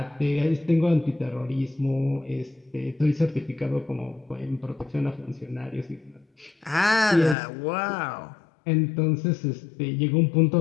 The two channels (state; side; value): drops out; right; at 7.4 s